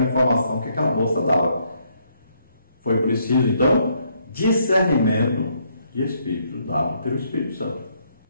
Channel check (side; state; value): both; inverted; correlation -0.72